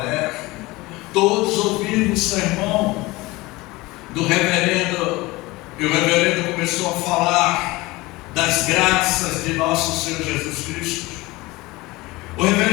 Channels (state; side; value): quieter; right; 21.4 dB